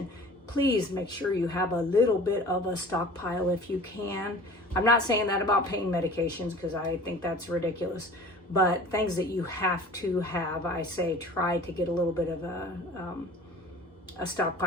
Please make sure you have a little bit of a stockpile if you can. I'm not saying that about pain medications because I think that's ridiculous. But things that you have to have, I say try to get a little bit of a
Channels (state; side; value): normal; both; correlation 0.44